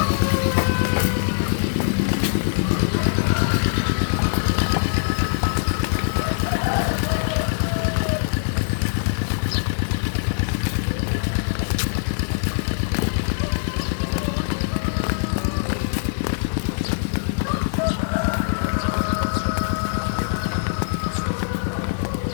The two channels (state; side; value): silent; right; 64 dB below the other